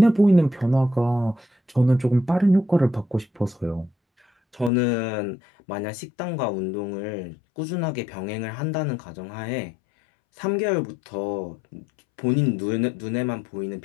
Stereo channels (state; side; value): drops out; right; at 4.7 s